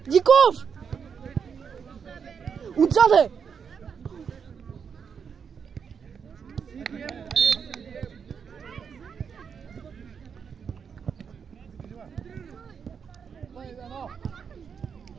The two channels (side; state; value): left; quieter; 6.7 dB